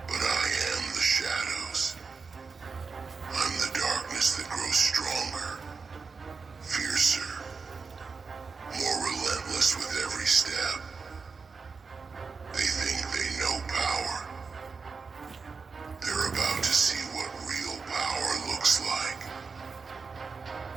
But I am the shadows. I'm the darkness that grows stronger, fiercer, more relentless with every step. They think they know power. They're about to see what real power looks like.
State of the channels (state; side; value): quieter; left; 4.8 dB